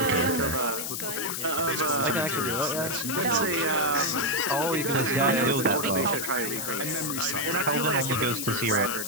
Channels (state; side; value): noise; left; hiss, 4 dB below the sound